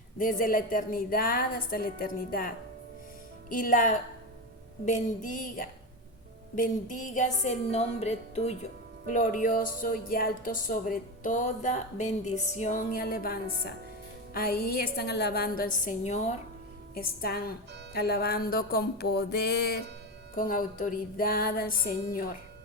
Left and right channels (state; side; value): normal; both; correlation 0.17